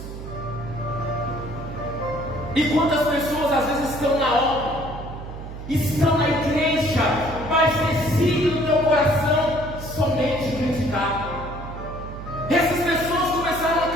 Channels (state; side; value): noise; right; hum, 10 dB below the sound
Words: E quantas pessoas às vezes estão na obra, estão na igreja, mas decidem no teu coração somente criticar. Essas pessoas começaram a